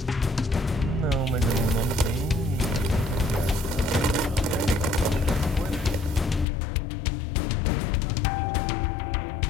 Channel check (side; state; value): right; drops out; at 6.5 s